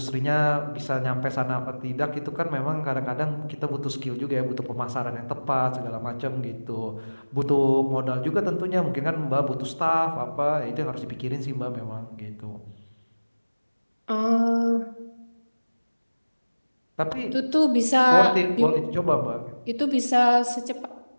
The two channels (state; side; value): inverted; both; correlation -1.00